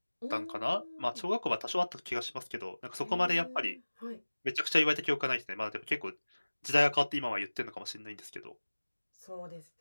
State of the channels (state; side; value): inverted; both; correlation -1.00